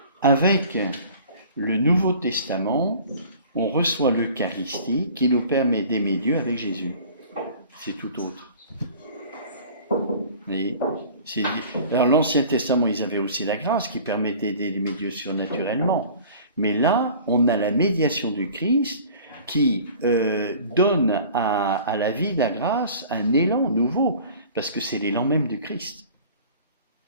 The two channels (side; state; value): both; inverted; correlation -0.45